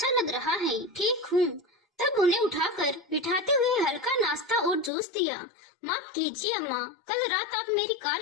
लग रहा है, ठीक हूँ। तब उन्हें उठाकर बिठाते हुए हल्का नाश्ता और जूस दिया। माफ कीजिए अम्मा, कल रात आप मेरी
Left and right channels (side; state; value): right; drops out; at 4.9 s